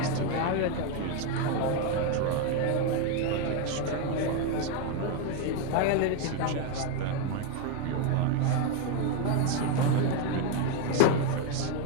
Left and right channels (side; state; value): both; different; correlation 0.02